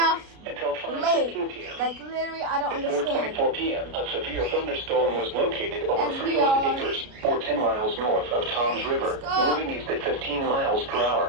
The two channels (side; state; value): left; late; 33 ms